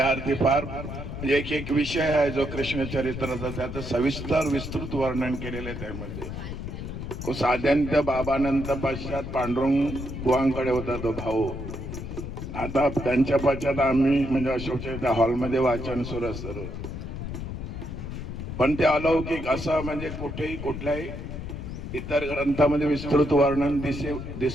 अर्थी फार म्हणजे एक विषय आहे जो कृष्ण चरित्राचा त्याचं सविस्तर विस्तृत वर्णन केलेलं आहे त्यामध्ये. साध्यांत बाबानंतर पश्चात पांडुरंग बुवांकडे होता तो भाऊ. आता त्यांच्या पश्चात आम्ही म्हणजे अशोकच्या त्या हॉलमध्ये वाचन सुरू असतं पण ते अलौकिक असं म्हणजे कुठेही कुठल्याही इतर ग्रंथामध्ये विस्तृत वर्णन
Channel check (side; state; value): left; noise; rumble, 7 dB below the sound